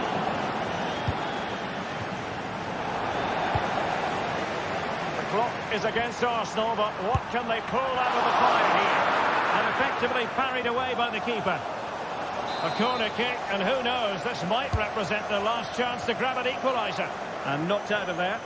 Clock is against Arsenal, but what can they pull out of the fire here? And effectively parried away by the keeper. A corner kick, and who knows, this might represent their last chance to grab an equaliser. And knocked out of there.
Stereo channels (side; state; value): both; identical; correlation 1.00